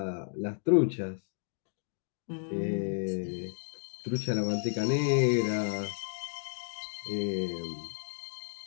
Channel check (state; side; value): silent; right; digital silence